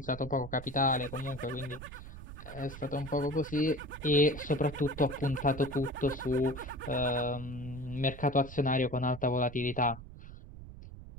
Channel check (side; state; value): right; noise; rumble, 14 dB below the sound